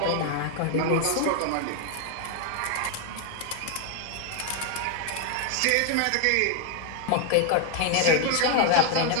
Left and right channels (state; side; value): different; both; correlation 0.01